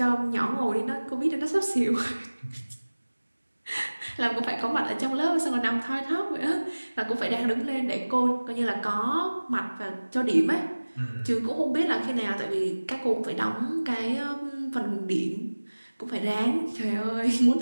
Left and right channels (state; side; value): inverted; both; correlation -1.00